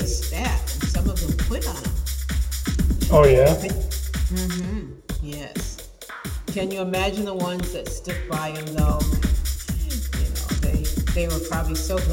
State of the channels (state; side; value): identical; both; correlation 1.00